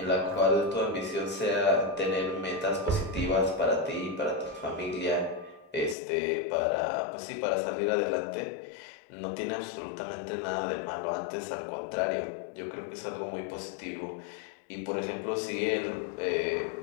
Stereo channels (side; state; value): right; drops out; at 6.0 s